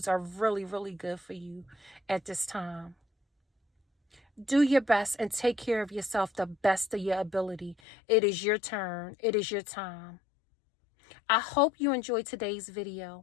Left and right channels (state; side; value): drops out; right; at 7.8 s